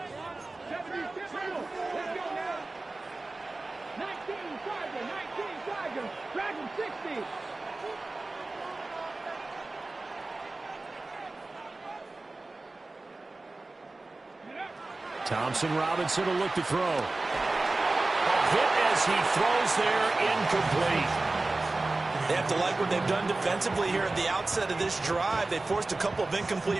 Thompson Robinson will look to throw. A hit as he throws there, incomplete. They have to like what they've done defensively here at the outset of this drive. They forced a couple of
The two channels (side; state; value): left; quieter; 3.2 dB